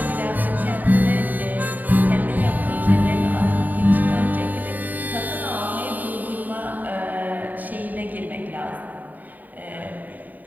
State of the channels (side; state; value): left; late; 0.084 ms